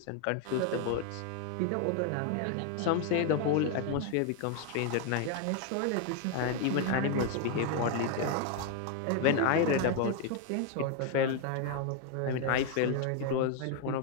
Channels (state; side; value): different; both; correlation 0.01